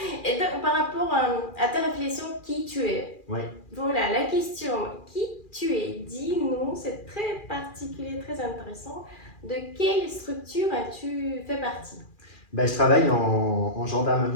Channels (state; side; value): late; right; 2.4 ms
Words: Et donc, par rapport à ta réflexion, qui tu es? Ouais. Voilà, la question, qui tu es? Dis-nous, c'est très particulier, très intéressant. De quelle structure as-tu fait partie? Bah, je travaille en